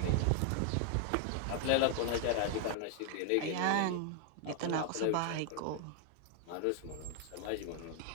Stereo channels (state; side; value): different; both; correlation 0.00